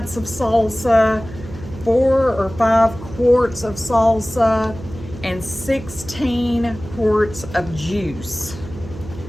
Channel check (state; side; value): noise; right; hum, 14 dB below the sound